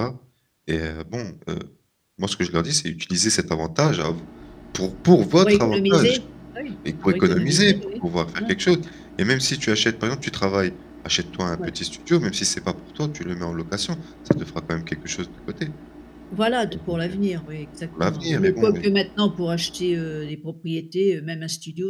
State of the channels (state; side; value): identical; both; correlation 1.00